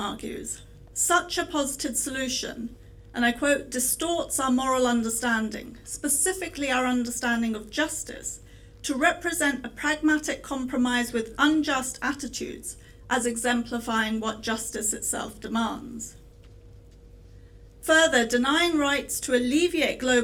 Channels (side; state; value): both; identical; correlation 1.00